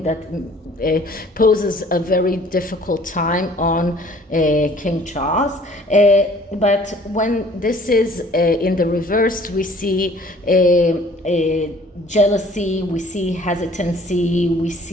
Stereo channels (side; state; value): both; normal; correlation 0.54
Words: that poses a very difficult time on King Charles. But when this is in the reverse, we see jealousy, we see hesitancy, we